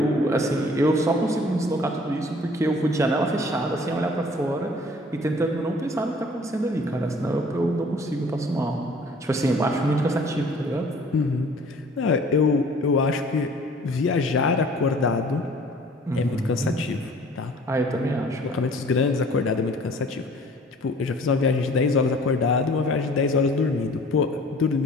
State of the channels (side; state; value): both; normal; correlation 0.51